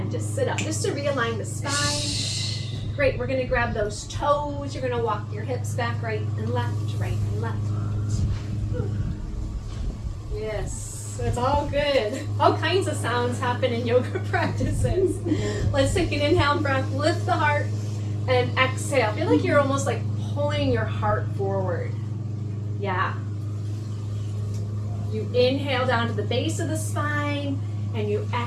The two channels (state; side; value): identical; both; correlation 1.00